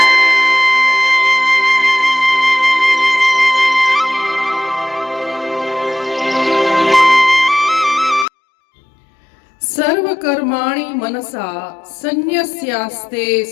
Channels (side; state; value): right; drops out; at 8.2 s